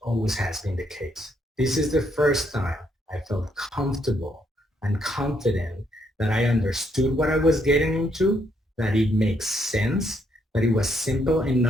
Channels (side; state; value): both; normal; correlation 0.73